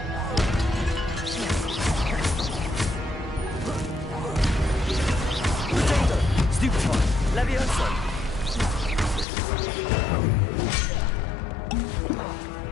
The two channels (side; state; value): right; drops out; at 9.2 s